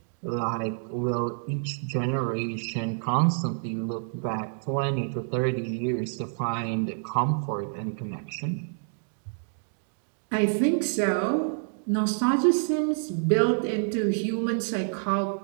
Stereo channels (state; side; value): silent; left; digital silence